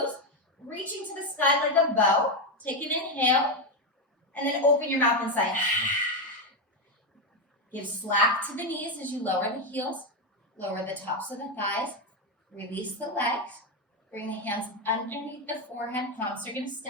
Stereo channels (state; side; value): normal; both; correlation 0.08